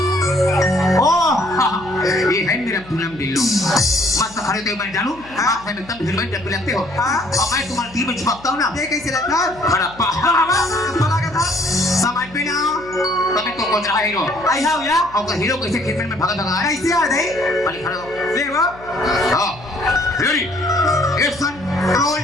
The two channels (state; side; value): noise; left; hum, 21 dB below the sound